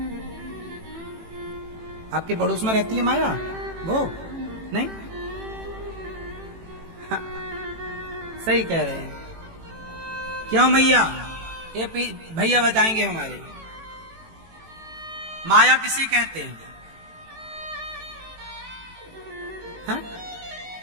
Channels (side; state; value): left; late; 18 ms